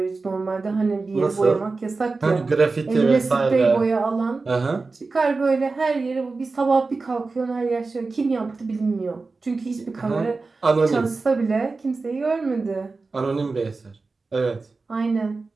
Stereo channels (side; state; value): left; quieter; 3.9 dB